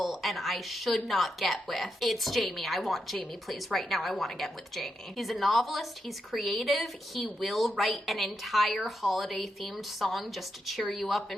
and I should not get with, it's Jamie. I want Jamie, please. Right now, I want to get with Jamie. He's a novelist. He's creative. He will write an entire holiday-themed song just to cheer you up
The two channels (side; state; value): both; normal; correlation 0.84